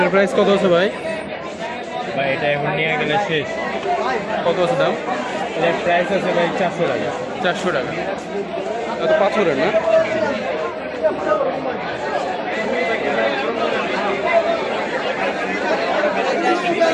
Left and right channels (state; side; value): identical; both; correlation 1.00